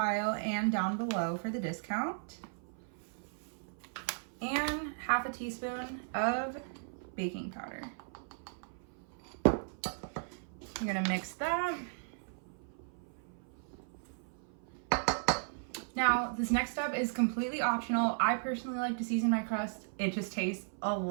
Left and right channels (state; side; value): silent; left; 54 dB below the other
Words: and down below for the discount. And 1/2 teaspoon of baking powder. You're gonna mix that. Now, this next step is completely optional. I personally like to season my crust. It just tastes a